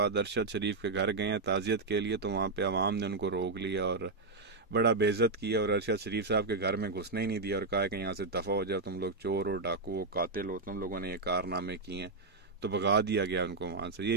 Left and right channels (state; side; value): quieter; left; 3.6 dB